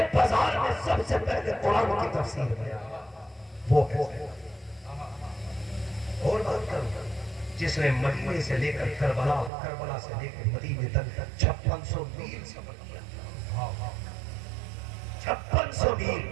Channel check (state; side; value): drops out; left; at 9.5 s